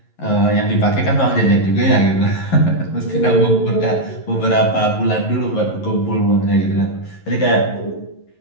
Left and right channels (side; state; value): right; late; 11 ms